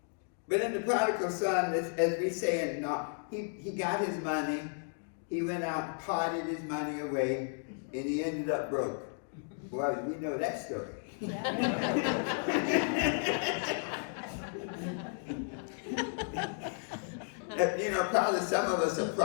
But in the prodigal son, as we say, he got his money, he went out and parted his money away, and he ended up broke. Boy, we know that story. Probably some of us are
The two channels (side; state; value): right; silent; 55 dB below the other